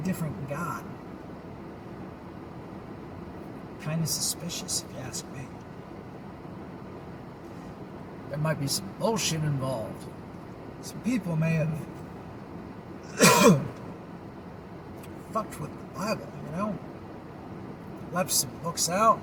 different God. Kind of suspicious, if you ask me. There might be some bullshit involved. Some people may have fucked with the Bible, you know? Left some books out.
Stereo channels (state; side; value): identical; both; correlation 1.00